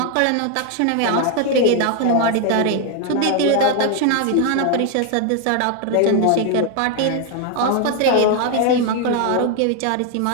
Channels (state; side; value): different; both; correlation 0.01